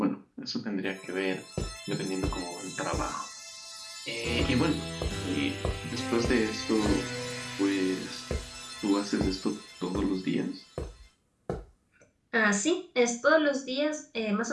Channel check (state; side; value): identical; both; correlation 1.00